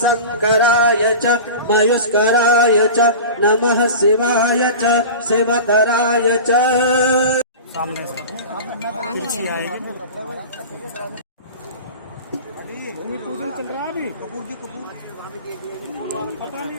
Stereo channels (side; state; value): both; inverted; correlation -0.33